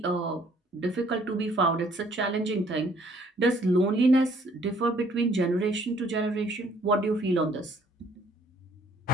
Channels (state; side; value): normal; both; correlation 0.61